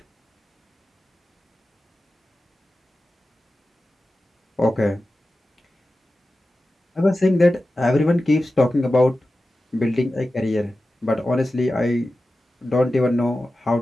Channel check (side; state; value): both; normal; correlation 0.94